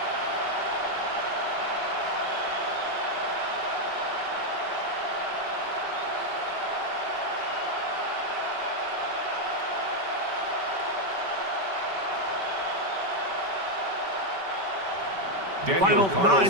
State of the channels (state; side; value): late; left; 5.2 ms